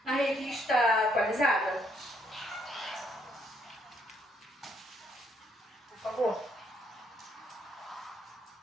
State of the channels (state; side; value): normal; both; correlation 0.71